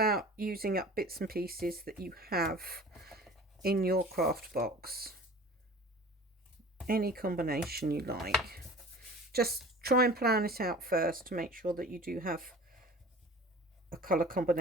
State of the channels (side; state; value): both; normal; correlation 0.42